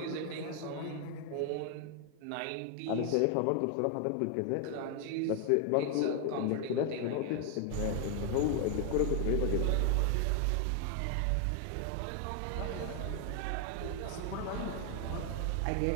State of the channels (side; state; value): both; different; correlation 0.00